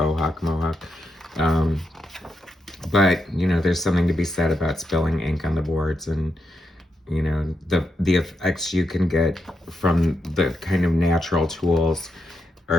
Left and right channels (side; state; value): both; normal; correlation 0.84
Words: hawk mohawk. But, you know, there's something to be said about spilling ink on the boards, and, you know, the effects you can get from the kind of natural tools,